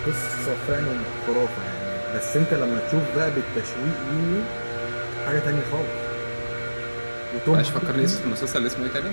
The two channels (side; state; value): both; inverted; correlation -1.00